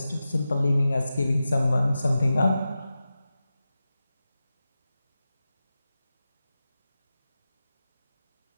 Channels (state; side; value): inverted; both; correlation -0.93